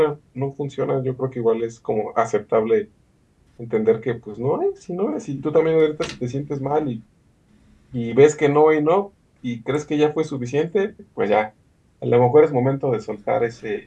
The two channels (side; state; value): both; identical; correlation 1.00